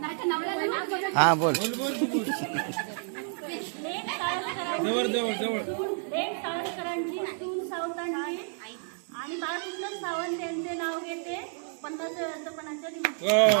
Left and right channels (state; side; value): silent; left; 56 dB below the other